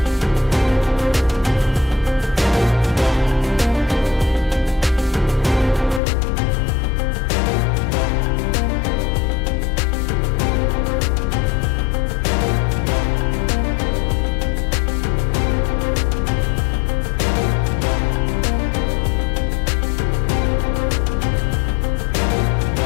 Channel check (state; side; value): drops out; right; at 6.0 s